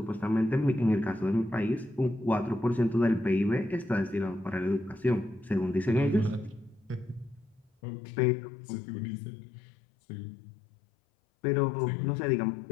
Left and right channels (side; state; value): right; drops out; at 7.7 s